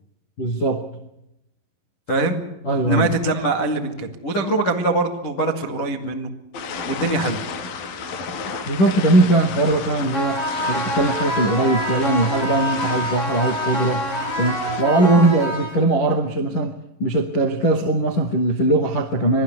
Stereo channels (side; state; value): right; late; 11 ms